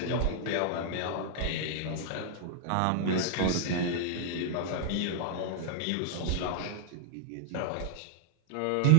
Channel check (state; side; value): different; both; correlation -0.01